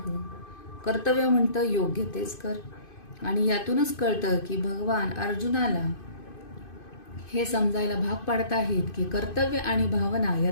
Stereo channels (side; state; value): right; late; 2.5 ms